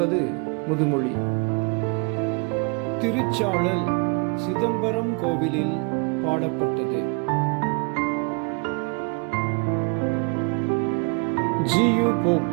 முதுமொழி. திருச்சாழல் சிதம்பரம் கோவிலில் பாடப்பட்டது. ஜி.யு. போப்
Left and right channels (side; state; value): left; quieter; 33.0 dB